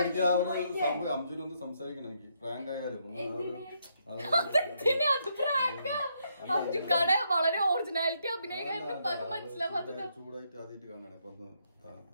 അംജുനൊന്ന് സംസാരിക്കണം എനിക്ക്. പ്രാങ്ക് ആയാലും അംജുക്കാടെ വളരെ ഒറിജിനാലിറ്റി അഭിനയിക്കാൻ മനസ്സിലാവാത്തത്. ചൂടായിട്ട് ആദ്യമായിട്ട് കാണാണ് ഇപ്പൊ.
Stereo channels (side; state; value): both; inverted; correlation -0.75